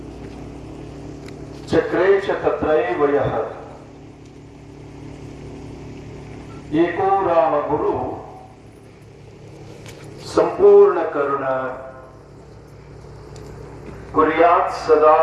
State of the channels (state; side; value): identical; both; correlation 1.00